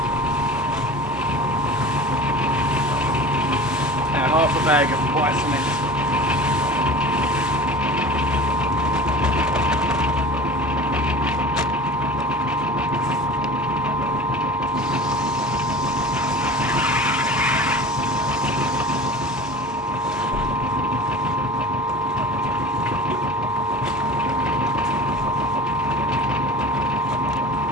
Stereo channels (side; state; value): both; normal; correlation 0.38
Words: Now half a bag of white cement.